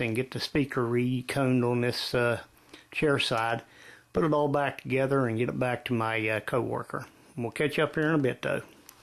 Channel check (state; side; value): identical; both; correlation 1.00